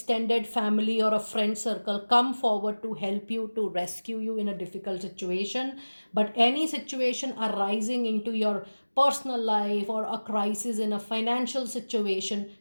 family or a friend circle, come forward to help you, to rescue you in a difficult situation. But any situation arising into your personal life or a crisis in a financial situation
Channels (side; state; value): both; inverted; correlation -1.00